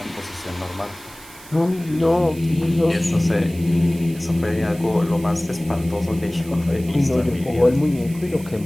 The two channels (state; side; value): noise; right; hiss, 20 dB below the sound